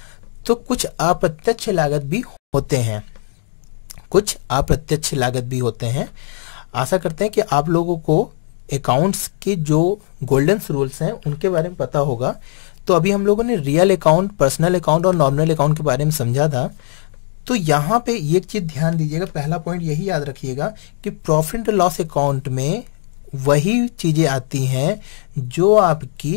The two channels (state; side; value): silent; right; digital silence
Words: तो कुछ अप्रत्यक्ष लागत भी होते हैं, आशा करते हैं कि आप लोगों को अकाउंट्स के जो गोल्डन रूल्स हैं उनके बारे में पता होगा। तो अभी हम लोगों ने रियल अकाउंट, पर्सनल अकाउंट और नॉमिनल अकाउंट के बारे में समझा था। तो यहाँ पे एक चीज ध्यान दीजिएगा, पहला पॉइंट यही याद रखिएगा कि प्रॉफिट एंड लॉस अकाउंट में वही चीजें आती हैं जो